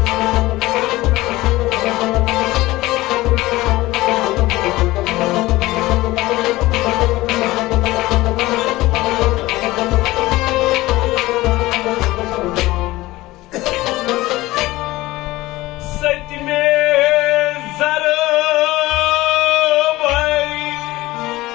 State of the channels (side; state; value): right; quieter; 18.6 dB